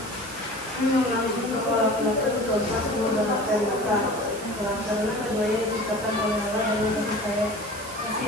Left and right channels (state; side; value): noise; right; hiss, 14 dB below the sound